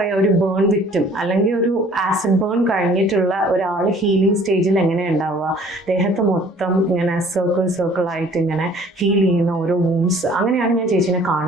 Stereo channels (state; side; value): normal; both; correlation 0.54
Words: ബേൺ വിക്ടിം അല്ലെങ്കിൽ ഒരു ആസിഡ് ബേൺ കഴിഞ്ഞിട്ടുള്ള ഒരാൾ ഹീലിംഗ് സ്റ്റേജിൽ എങ്ങനെയാണ് ഉണ്ടാവുക? ദേഹത്ത് മൊത്തം ഇങ്ങനെ സർക്കിളായിട്ട് ഇങ്ങനെ ഹീൽ ചെയ്യുന്ന ഓരോ വൂൺസ്. അങ്ങനെയാണ് ഞാൻ ചേച്ചിനെ